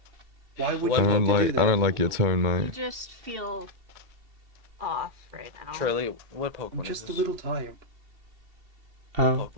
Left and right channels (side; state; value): left; late; 2.2 ms